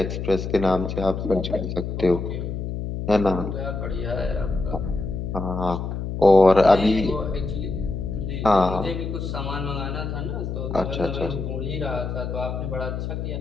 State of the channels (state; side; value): noise; left; hum, 4 dB below the sound